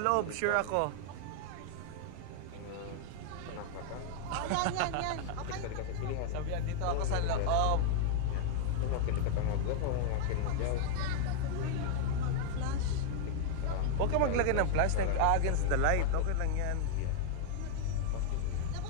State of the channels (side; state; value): both; different; correlation 0.00